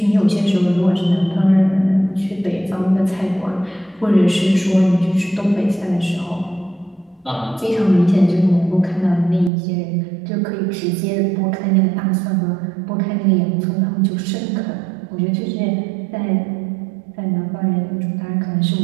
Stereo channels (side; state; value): left; drops out; at 9.5 s